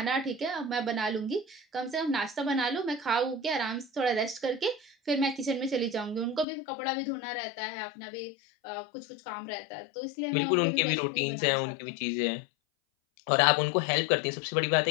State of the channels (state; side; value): drops out; right; at 6.5 s